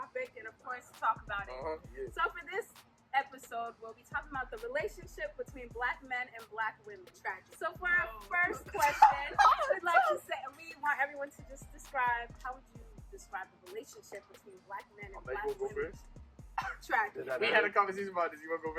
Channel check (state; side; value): identical; both; correlation 1.00